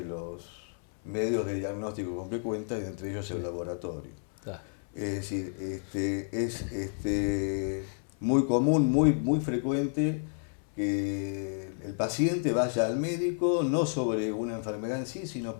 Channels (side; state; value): right; silent; 57 dB below the other